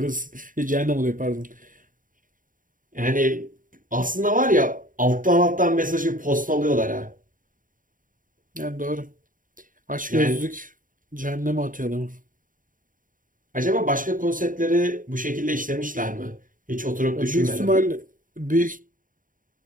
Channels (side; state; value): left; late; 0.39 ms